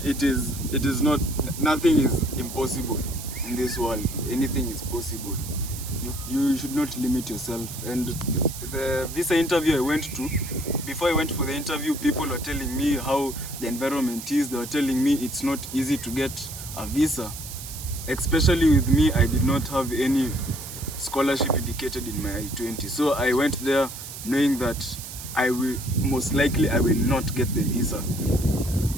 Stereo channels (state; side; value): noise; right; hiss, 11 dB below the sound